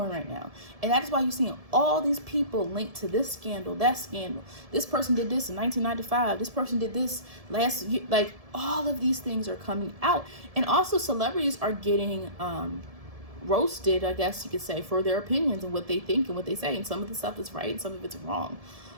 right now. And that is why you're seeing all these people linked to this scandal, that scandal. This person did this in 1995. This person did this last year. Like, all of these things are coming out. And also celebrities are getting roasted, I guess you could say, for their opinions and what they think and what they say. And some of the stuff is right and some of it's wrong.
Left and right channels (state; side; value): late; left; 1.7 ms